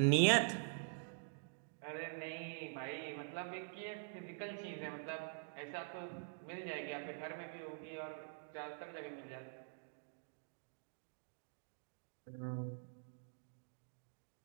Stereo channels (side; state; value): left; silent; digital silence